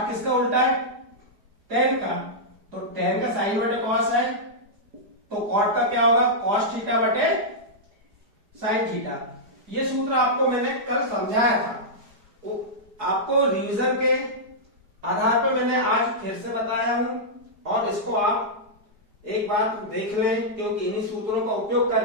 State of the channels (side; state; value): left; late; 4.9 ms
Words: किसका उल्टा है, टेन का, तो टेन का साइन बटे कॉस है, तो कॉट का क्या होगा, कॉस थीटा बटे साइन थीटा। ये सूत्र आपको मैंने कल समझाया था, आपको रिवीजन के आधार पर मैंने आज फिर से बताया हूं, और इसको आप एक बार देख लें, क्योंकि इन्हीं सूत्रों का उपयोग